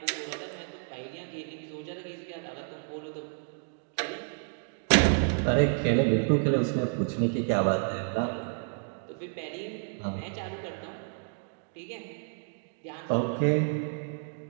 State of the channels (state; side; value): silent; left; 57 dB below the other